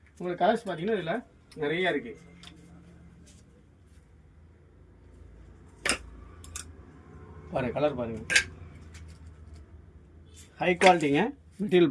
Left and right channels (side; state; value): both; identical; correlation 1.00